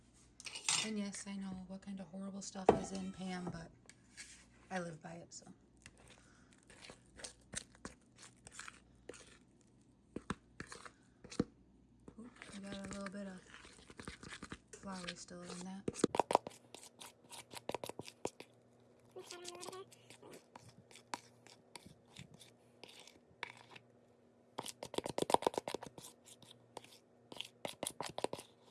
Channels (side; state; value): both; identical; correlation 1.00